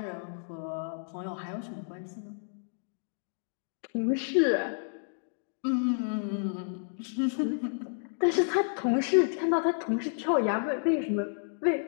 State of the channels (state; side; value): silent; right; digital silence